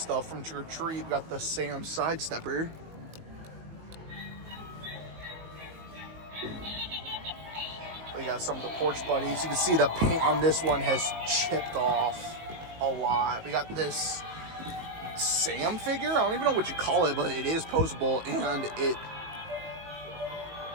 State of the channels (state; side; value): late; left; 19 ms